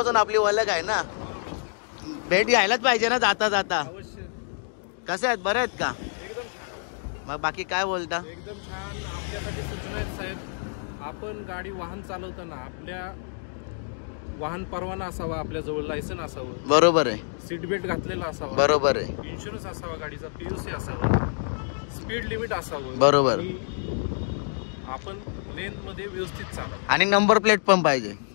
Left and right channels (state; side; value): silent; right; digital silence